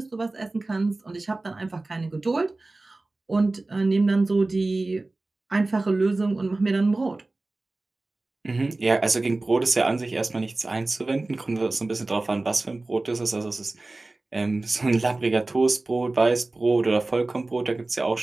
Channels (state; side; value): quieter; left; 3.1 dB